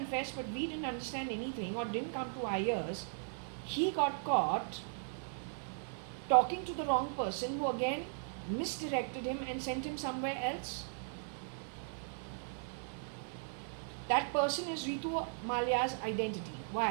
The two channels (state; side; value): silent; left; 53 dB below the other